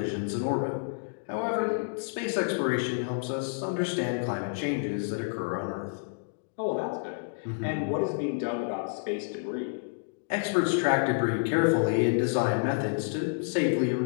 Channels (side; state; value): right; silent; digital silence